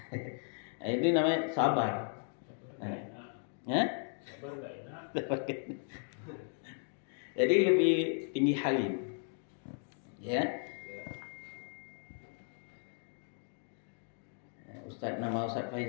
Nah, itu namanya sabar. Ya? Sabar nggak enak. Jadi lebih tinggi halim. Ya. Ustaz, nama Ustaz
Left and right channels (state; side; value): silent; right; 54 dB below the other